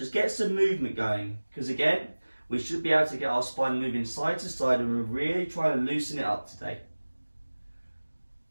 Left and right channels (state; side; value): inverted; both; correlation -1.00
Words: get some movement going, because again, we should be able to get our spine moving side to side, and we're really trying to loosen it up today.